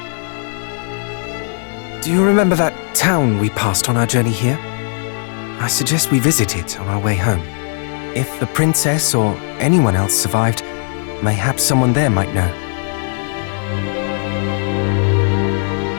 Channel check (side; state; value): right; silent; digital silence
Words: Do you remember that town we passed on our journey here? I suggest we visit it on our way home. If the princess or anyone else survived, mayhaps someone there might know.